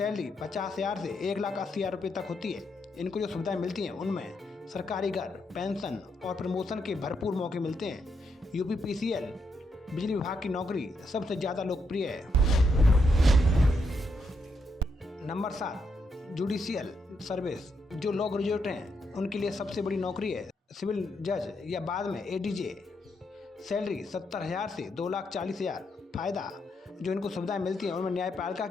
50,000 से 1,80,000 रुपये तक होती है। इनको जो सुविधाएं मिलती हैं उनमें सरकारी घर, पेंशन और प्रमोशन के भरपूर मौके मिलते हैं। UPPCL बिजली विभाग की नौकरी सबसे ज़्यादा लोकप्रिय है। Number 7, judicial service. जो लॉ ग्रेजुएट हैं उनके लिए सबसे बड़ी नौकरी है सिविल जज या बाद में ADJ। सैलरी 70,000 से 2,40,000। फ़ायदा जो इनको सुविधाएं मिलती हैं उनमें न्यायपालिका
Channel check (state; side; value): normal; both; correlation 0.79